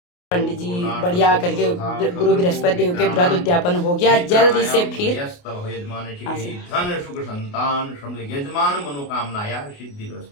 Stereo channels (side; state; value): right; late; 28 ms